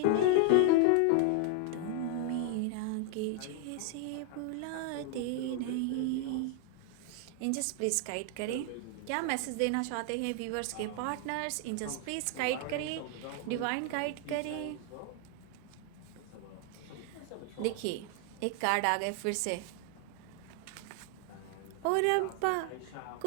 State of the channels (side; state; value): both; different; correlation 0.00